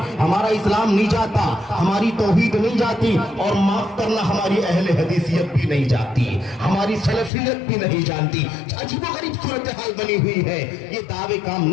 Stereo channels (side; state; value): right; drops out; at 7.3 s